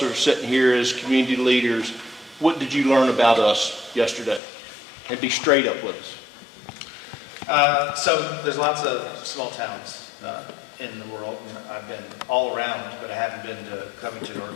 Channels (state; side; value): drops out; right; at 4.4 s